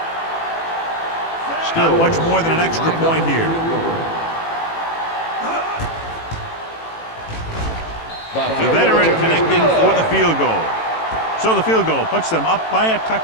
Not much more than an extra point here. The veteran connecting for the field goal. So the field goal puts them up by a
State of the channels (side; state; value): right; late; 18 ms